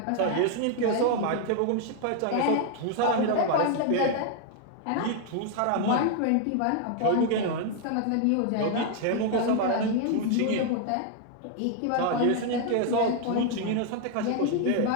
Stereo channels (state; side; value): different; both; correlation 0.00